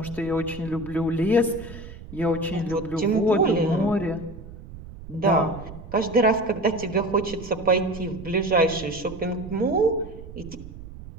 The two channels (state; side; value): noise; right; rumble, 14 dB below the sound